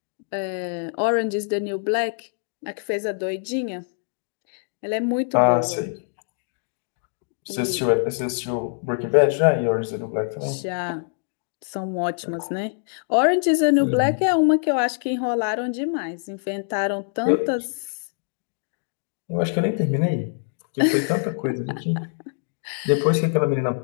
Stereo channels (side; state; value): right; silent; digital silence